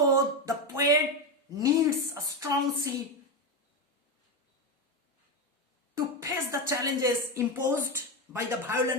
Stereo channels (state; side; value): normal; both; correlation 0.11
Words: the poet needs a strong ship to face the challenges imposed by the